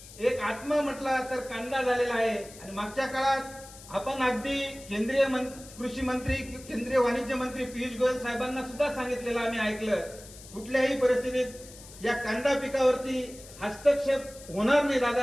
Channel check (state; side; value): noise; left; hiss, 18 dB below the sound